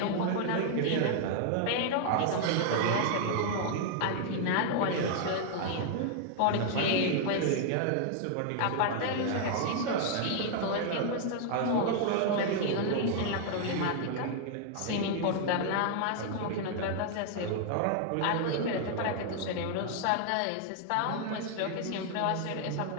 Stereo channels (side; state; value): both; different; correlation 0.00